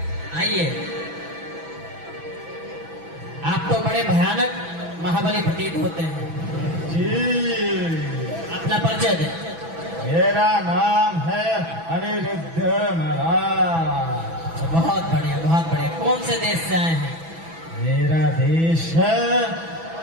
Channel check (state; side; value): late; left; 6.1 ms